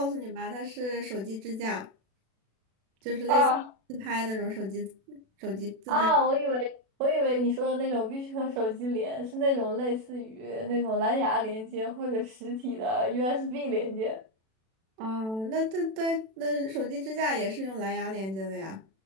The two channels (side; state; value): left; late; 36 ms